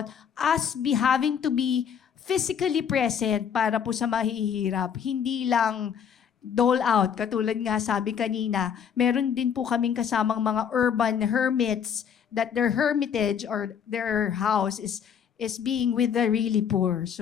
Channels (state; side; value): quieter; right; 7.8 dB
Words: us having to be physically present para po sa mahihirap. Hindi lang dole out. Katulad nga sabi kanina, meron din po kaming kasamang mga urban hermits that their hermitage or their house is being with the really poor.